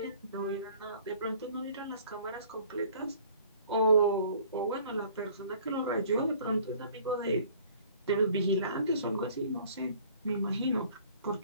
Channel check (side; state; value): both; inverted; correlation -0.53